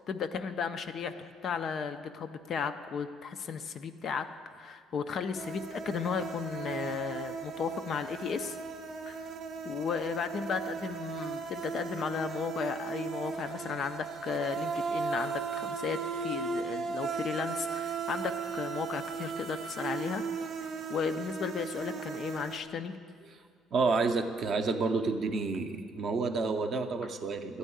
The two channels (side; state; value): both; normal; correlation 0.64